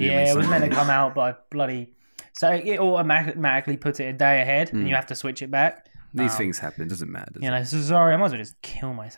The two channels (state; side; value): inverted; both; correlation -1.00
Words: it was meant to come out by bloody. So it automatically puts it a day ahead, and you have to switch it back. These things happen. Doesn't matter. So sorry, I might as well just kill